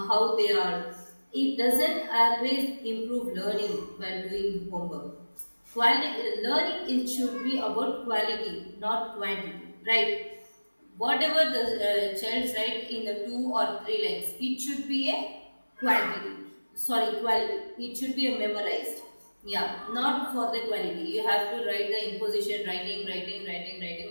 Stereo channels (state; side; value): inverted; both; correlation -1.00